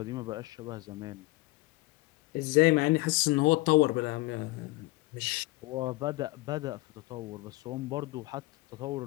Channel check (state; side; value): quieter; right; 21.6 dB